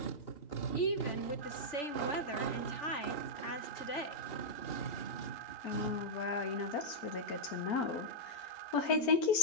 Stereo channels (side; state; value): right; late; 3.4 ms